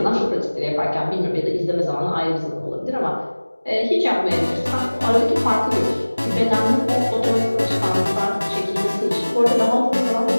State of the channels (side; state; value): both; inverted; correlation -1.00